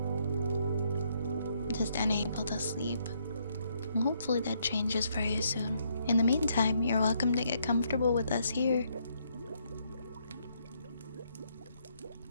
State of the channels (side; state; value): both; inverted; correlation -0.72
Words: just unable to sleep. Hopefully that changes very soon. In the meantime, you're welcome to get comfortable with us here.